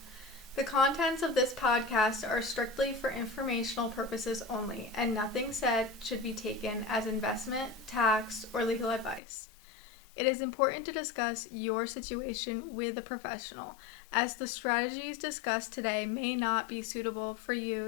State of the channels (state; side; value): drops out; right; at 9.2 s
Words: The contents of this podcast are strictly for informational purposes only, and nothing said should be taken as investment, tax, or legal advice. It is important to discuss your situation with a professional, as the strategies discussed today may not be suitable for you